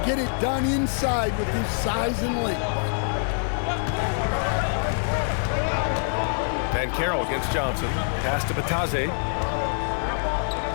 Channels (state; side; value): silent; right; digital silence